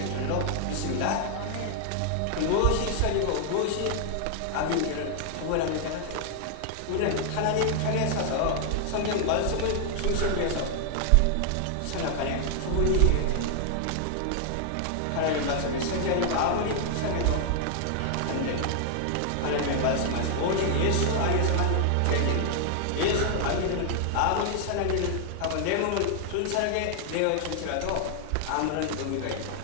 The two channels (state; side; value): different; both; correlation 0.00